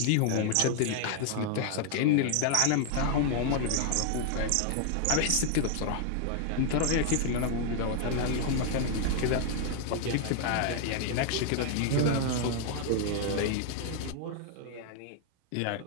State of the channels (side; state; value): both; different; correlation 0.00